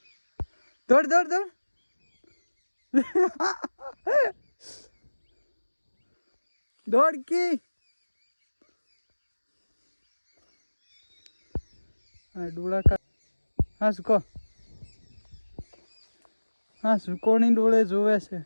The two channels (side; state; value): both; inverted; correlation -1.00